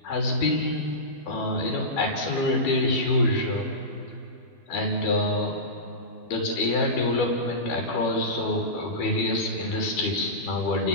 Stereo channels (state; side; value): late; right; 12 ms